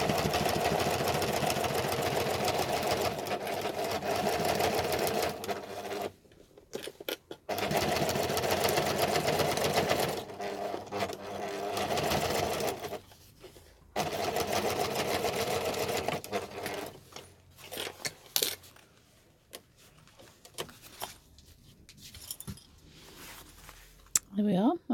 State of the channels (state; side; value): identical; both; correlation 1.00